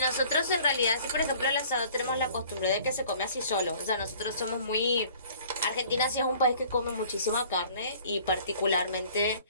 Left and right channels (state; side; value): inverted; both; correlation -0.52